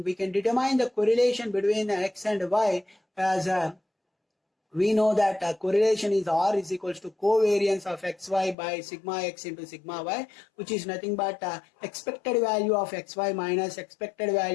we can determine the correlation between x and y as we know that correlation is R is equals to covariance of xy by sigma x into sigma y, which is nothing but expected value of xy minus expected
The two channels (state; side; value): drops out; right; at 8.6 s